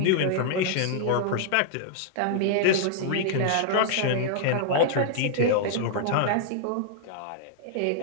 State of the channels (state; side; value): different; both; correlation -0.01